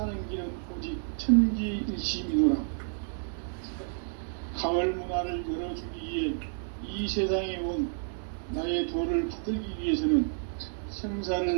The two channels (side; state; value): left; silent; digital silence